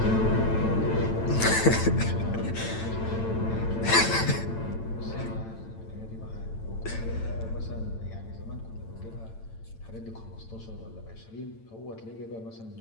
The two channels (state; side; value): late; right; 9.0 ms